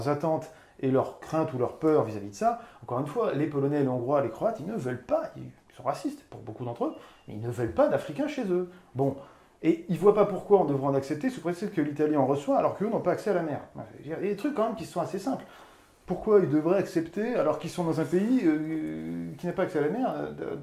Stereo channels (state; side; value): identical; both; correlation 1.00